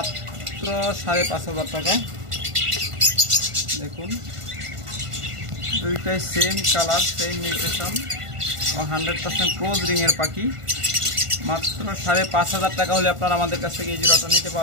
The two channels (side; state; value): left; late; 1.5 ms